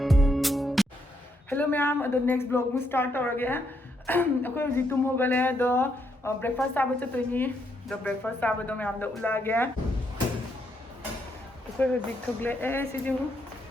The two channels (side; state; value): both; normal; correlation 0.76